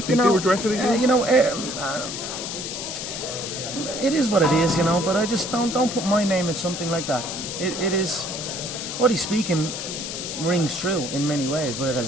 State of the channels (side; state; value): left; noise; hiss, 6 dB below the sound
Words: think they were directed at you? It is what it is, but I just don't put my name in something like that. It is, what he's speaking rings true in many ways, but it